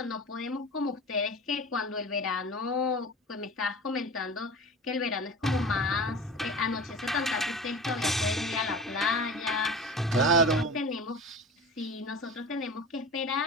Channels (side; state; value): both; normal; correlation 0.35